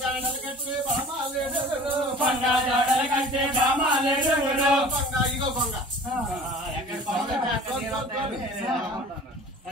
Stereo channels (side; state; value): both; normal; correlation 0.44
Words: జాడలు కట్టి బామాలేడు కొండ జాడలు కట్టి బామాలేడుగులు కొంగ ఇగో కొంగ